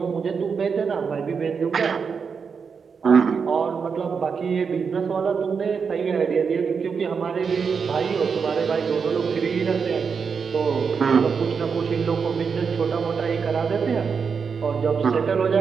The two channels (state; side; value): quieter; left; 5.9 dB